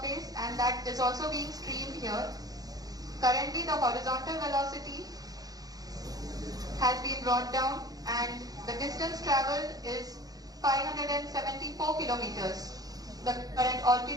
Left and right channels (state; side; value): late; left; 0.18 ms